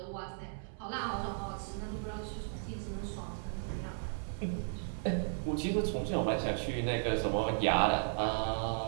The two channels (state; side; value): silent; left; 54 dB below the other